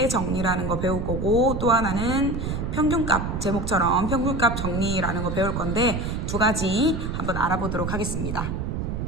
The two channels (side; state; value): right; noise; rumble, 3 dB below the sound